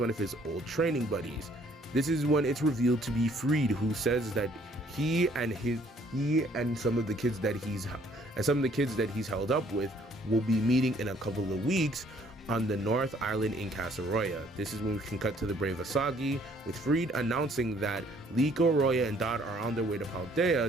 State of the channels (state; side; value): normal; both; correlation 0.62